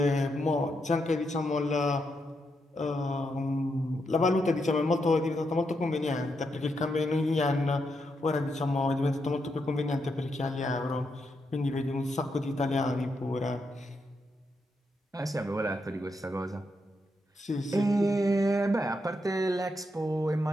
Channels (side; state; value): both; normal; correlation 0.81